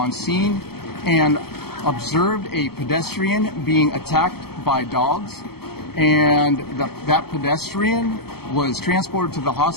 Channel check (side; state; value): right; late; 0.96 ms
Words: scene and observed a pedestrian being attacked by dogs, and that pedestrian was transported to the